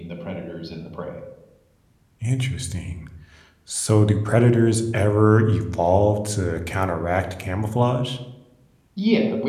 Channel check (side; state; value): both; identical; correlation 1.00